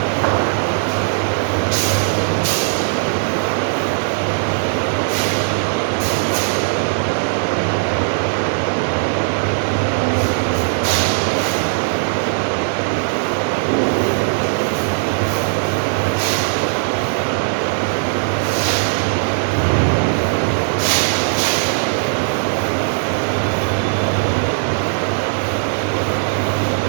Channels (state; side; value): silent; left; 67 dB below the other